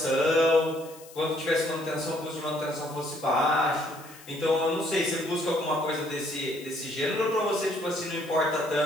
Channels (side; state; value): left; noise; hiss, 20 dB below the sound